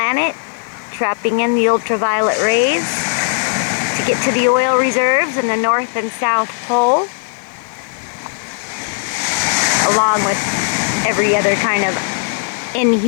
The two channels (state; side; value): silent; right; 60 dB below the other